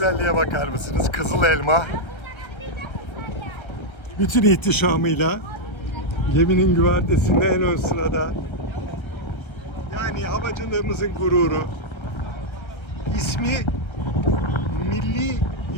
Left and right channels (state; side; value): late; right; 1.3 ms